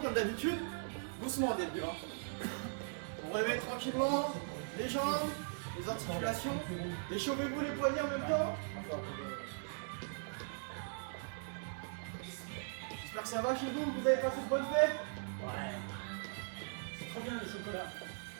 d'habitude. Doucement au début. Vous réveillez tranquillement les jambes, les articulations. Échauffez-vous les poignets en même temps. J'espère que ça va chez vous, que vous avez passé de bonnes fêtes. Ouais. C'est trop bien le chocolat.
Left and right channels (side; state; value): left; silent; digital silence